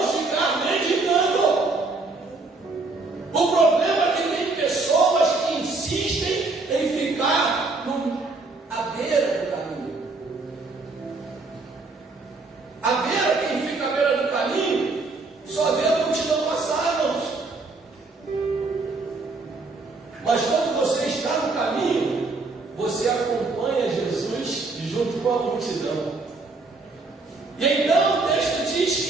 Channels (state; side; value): quieter; left; 3.6 dB